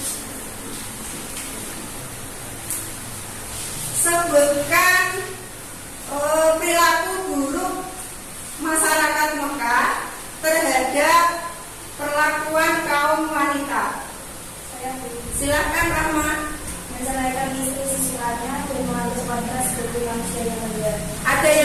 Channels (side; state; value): both; identical; correlation 1.00